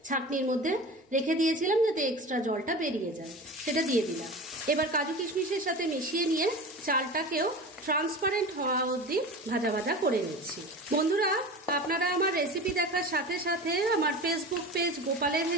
ছাঁকনির মধ্যে রেখে দিয়েছিলাম যাতে এক্সট্রা জলটা বেরিয়ে যায়, সেটা দিয়ে দিলাম। এবার কাজু কিশমিশের সাথে মিশিয়ে নিয়ে চালটাকেও ট্রান্সপারেন্ট হওয়া অবধি ভাজা ভাজা করে নিচ্ছি। বন্ধুরা, আপনারা আমার রেসিপি দেখার সাথে সাথে আমার ফেসবুক পেজ গোপালের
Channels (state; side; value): normal; both; correlation 0.32